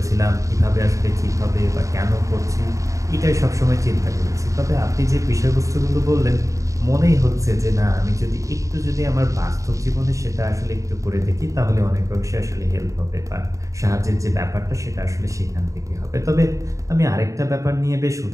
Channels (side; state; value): left; late; 0.16 ms